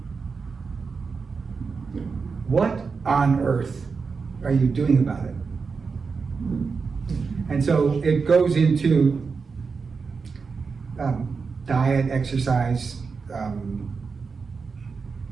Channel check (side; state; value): left; quieter; 5.0 dB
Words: What on earth are you doing about it? And so it goes into diet, exercise,